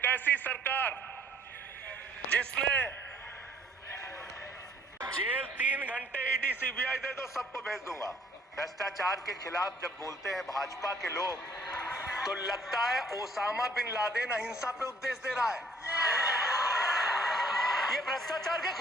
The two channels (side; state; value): both; normal; correlation 0.60